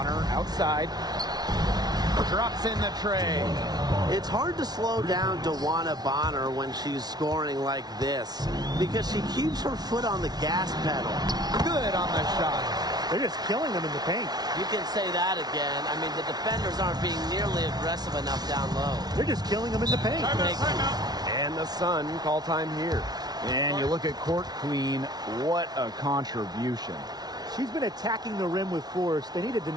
outside. Drops in the tray. It's hard to slow down DeWanna Bonner when she's scoring like this because she keeps her foot on the gas pedal. Good on the shot. They're just killing them in the paint. You can say that again. I mean, the defenders aren't being nearly aggressive enough down low. They're just killing them in the paint. And the Sun call time here. And you look at Court Queen, what a contribution. She's been attacking the rim with force. They need to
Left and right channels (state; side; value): late; left; 0.19 ms